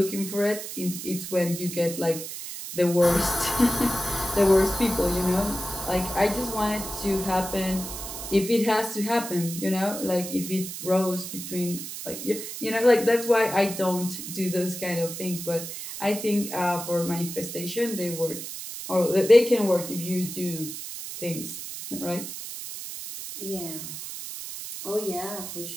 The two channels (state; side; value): noise; right; hiss, 8 dB below the sound